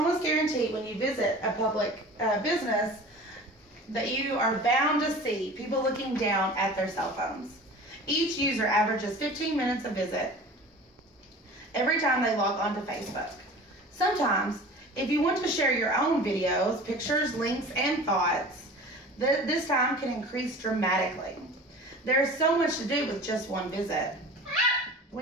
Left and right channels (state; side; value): normal; both; correlation 0.39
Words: guarantee when you visit a public business that you are bound to see people looking down at their cell phones. Each user averages 15 minutes a visit every time they log onto Facebook. Sometimes, if you want to share your own videos, pictures, links, and thoughts, this time can increase dramatically. There's so much to do with just one visit.